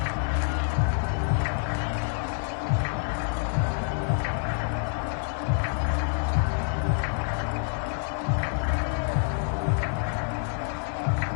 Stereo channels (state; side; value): silent; right; 56 dB below the other